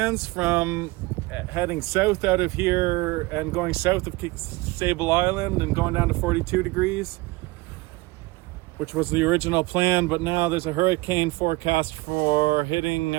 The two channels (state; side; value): quieter; left; 22.2 dB